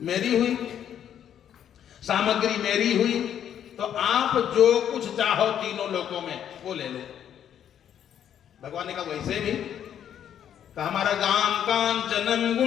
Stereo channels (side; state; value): right; quieter; 9.6 dB